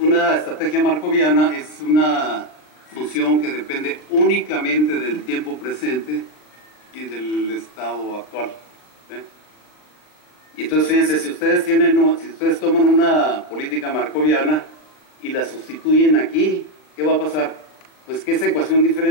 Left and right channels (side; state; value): right; late; 39 ms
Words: estrategia markoviana es una función que depende únicamente del tiempo presente y del estado actual. Y entonces, fíjense, si ustedes toman una política markoviana y la sustituyen aquí, ¿qué va a pasar? Pues que esa ecuación